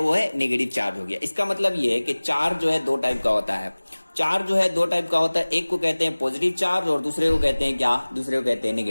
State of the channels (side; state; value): both; inverted; correlation -1.00